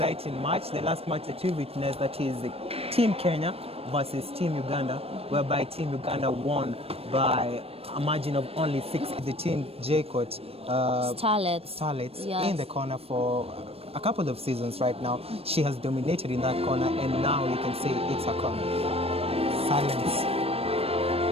match. The last match that we witnessed, that is the Team Kenya versus Team Uganda, whereby Team Uganda won by a margin of only 6. The Team Jaycott Starlets Yes. in the corner for a couple of seasons right now. She has dominated in that corner, and now you can say it's a corner. Silence.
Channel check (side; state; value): left; late; 0.28 ms